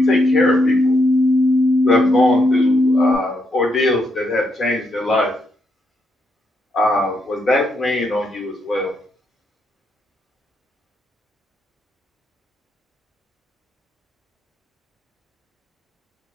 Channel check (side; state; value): both; normal; correlation 0.79